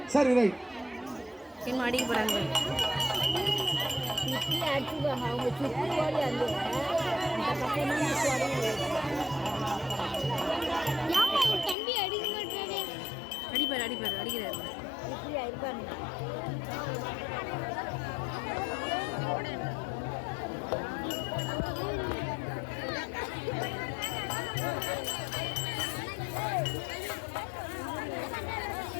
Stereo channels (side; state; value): right; drops out; at 11.8 s